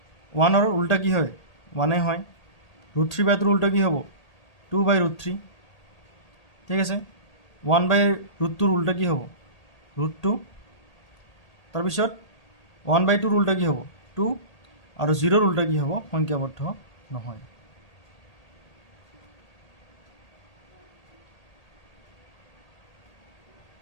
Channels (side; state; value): right; late; 1.8 ms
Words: 1ৰ উল্টা কি হয়? 1 হয়। √3/2ৰ উল্টা কি হ'ব? 2/√3। ঠিক আছে। 1/√2ৰ উল্টা কি হ'ব? √2। তাৰপিছত 1/2ৰ উল্টা কি হ'ব? 2। আৰু 0ৰ উল্টা কি হ'ব? সংখ্যাবদ্ধ নহয়।